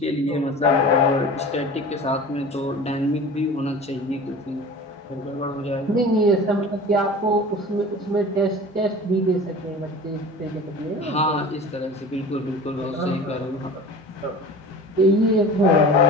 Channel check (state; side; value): normal; both; correlation 0.38